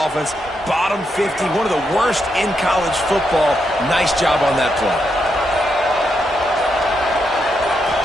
Bottom 50, one of the worst in college football. Nice job on that play.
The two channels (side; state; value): both; normal; correlation 0.81